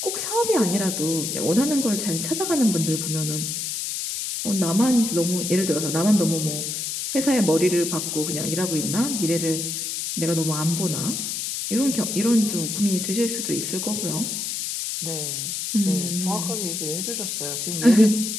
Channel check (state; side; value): noise; left; hiss, 3 dB below the sound